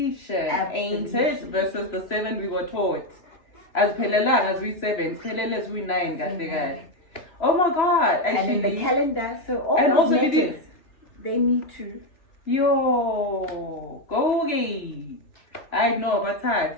ain't it? Versus the 7 we were taught. As Pelelang, as we 7, Pelele as we 9, oh my God. Actually, and in the calendar, so all the letters, they need to. Gogi. I know, but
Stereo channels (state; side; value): late; right; 3.0 ms